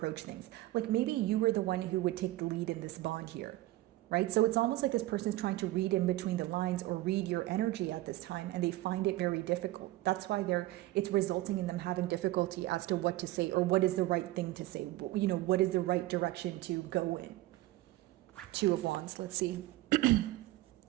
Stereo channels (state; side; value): quieter; left; 17.3 dB